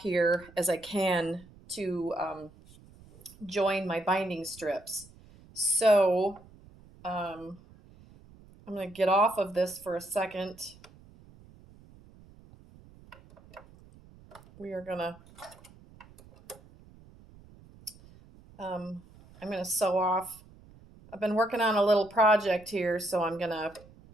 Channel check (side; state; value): right; noise; rumble, 23 dB below the sound